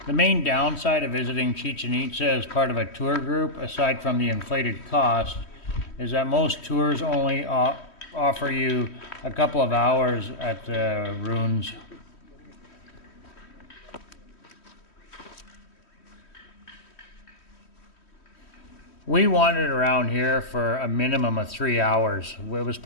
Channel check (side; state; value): right; late; 3.1 ms